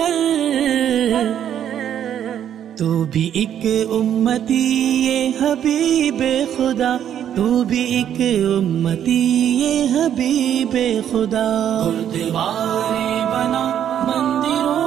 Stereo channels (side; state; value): left; quieter; 9.8 dB